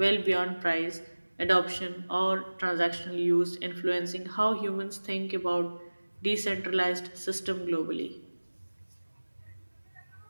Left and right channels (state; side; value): inverted; both; correlation -1.00